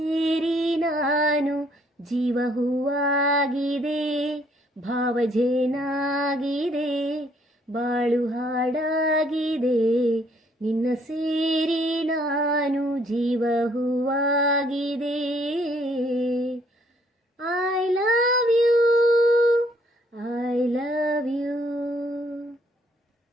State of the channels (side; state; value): both; normal; correlation 0.65